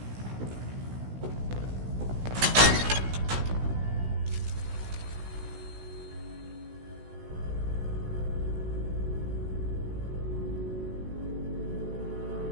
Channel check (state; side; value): late; left; 16 ms